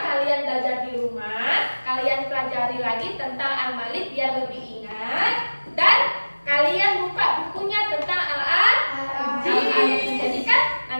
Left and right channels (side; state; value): both; inverted; correlation -1.00